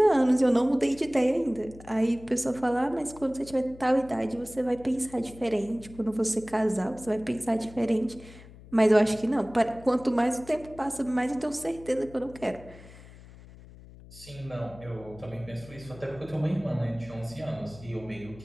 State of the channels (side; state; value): left; noise; hum, 19 dB below the sound